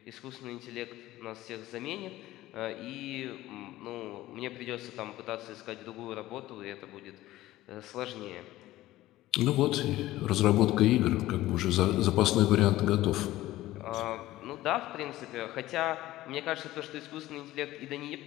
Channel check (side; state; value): right; quieter; 16.1 dB